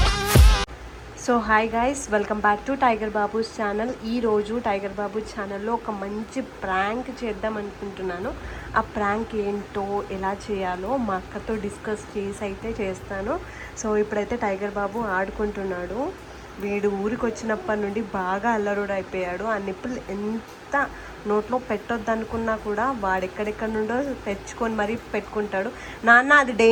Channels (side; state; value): both; identical; correlation 1.00